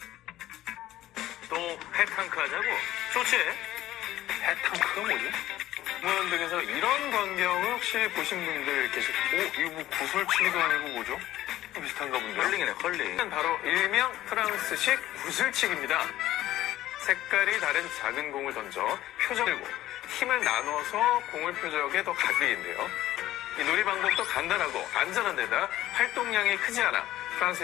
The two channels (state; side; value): quieter; right; 14.4 dB